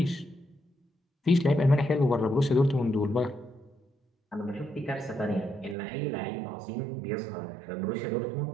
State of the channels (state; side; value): drops out; left; at 5.8 s